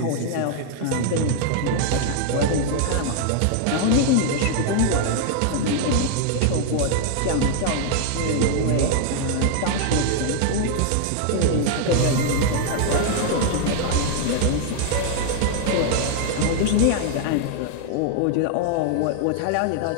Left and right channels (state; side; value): different; both; correlation 0.00